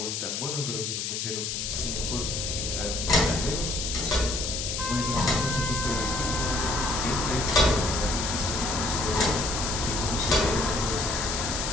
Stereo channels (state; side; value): noise; left; hiss, 2 dB below the sound